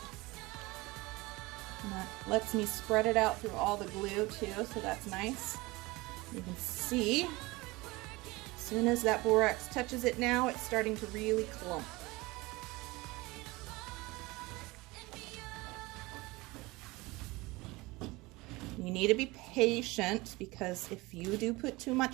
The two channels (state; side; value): quieter; left; 22.2 dB